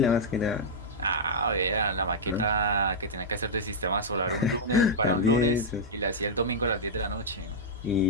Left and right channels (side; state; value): both; normal; correlation -0.07